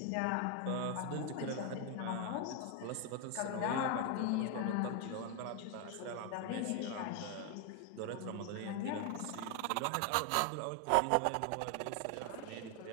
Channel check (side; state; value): both; different; correlation 0.01